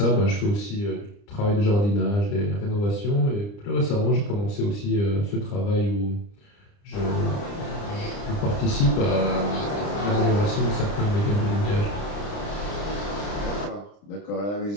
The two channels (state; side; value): late; right; 30 ms